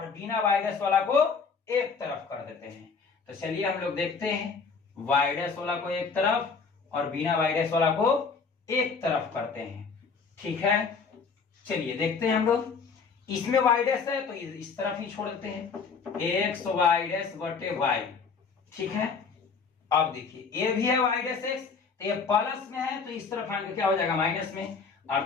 बिना y डैश वाला को एक तरफ कर देते हैं, तो चलिए हम लोग देखते हैं y डैश वाला को एक तरफ और बिना y डैश वाला को एक तरफ करते हैं, ठीक है। चलिए देखते हैं हम लोग, इसमें y डैश है तो इस तरफ ही छोड़ देते हैं x y डैश बटे y, ठीक है। अब देखिए ये भी है y डैश x, तो ये प्लस में है तो इस तरफ आएंगे क्या हो जाएगा माइनस में,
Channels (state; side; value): quieter; right; 5.2 dB